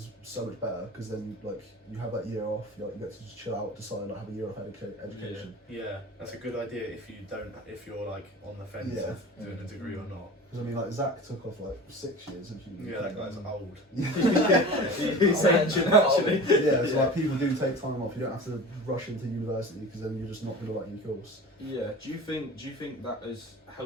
so much better because then, like, you have that year off, you get to just chill out, decide, like, have a year off education. Yeah, that's a good idea if you're like on the fence Yeah. of doing a degree or not. Because, I mean, like, Zach took off, like, 6 years of uni. Yeah, that guy's old. He's ancient, actually. Yeah, so, like, people do take time off. You don't have to rush into university because then you're just not going to like your course. Yeah. Do you think that has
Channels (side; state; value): both; normal; correlation 0.36